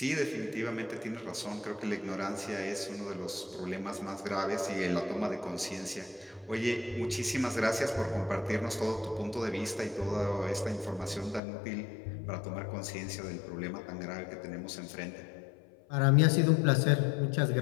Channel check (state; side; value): drops out; right; at 11.4 s